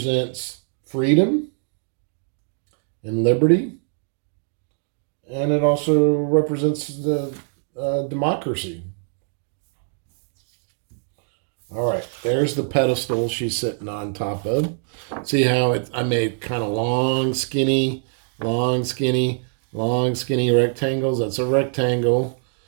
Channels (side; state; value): left; silent; digital silence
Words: freedom and liberty. And it also represents the democracy. All right, there's the pedestal she's sitting on top of. See how I made kind of long, skinny, long, skinny, long, skinny rectangles? That's a rectangle.